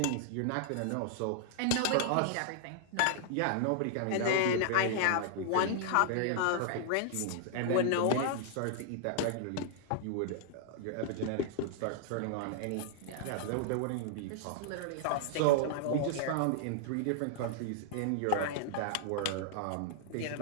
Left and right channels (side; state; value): both; different; correlation -0.01